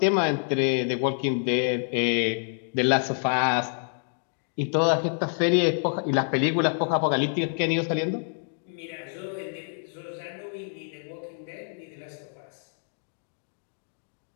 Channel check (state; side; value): silent; right; digital silence